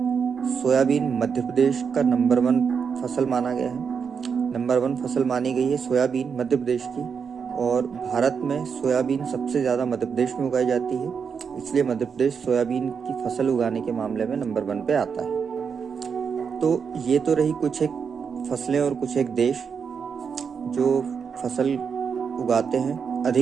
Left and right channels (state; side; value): quieter; left; 6.3 dB